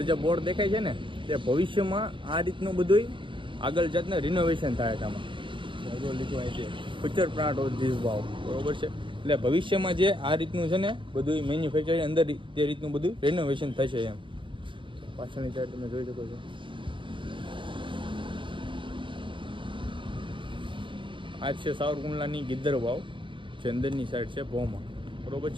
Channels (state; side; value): late; left; 0.24 ms